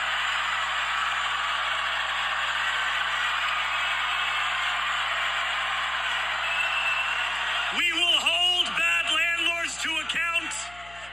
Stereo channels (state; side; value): noise; left; hum, 22 dB below the sound